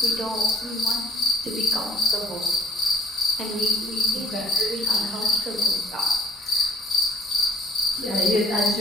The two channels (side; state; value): both; normal; correlation 0.54